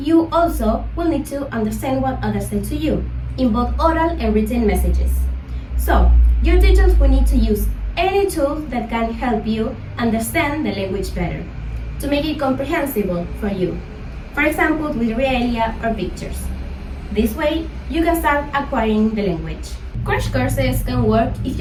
also will need to understand what others say to you, in both oral and written messages. So, your teachers will need to use any tool that can help you understand the language better, to make it comprehensible for you. For example, with realia or pictures. This way, you can start acquiring the language. Crash courses can work if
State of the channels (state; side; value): identical; both; correlation 1.00